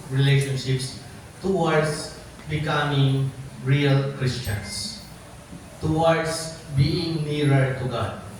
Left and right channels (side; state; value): both; identical; correlation 1.00